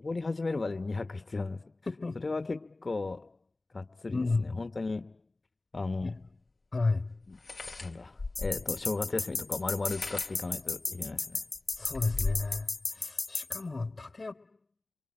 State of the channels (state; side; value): quieter; right; 3.0 dB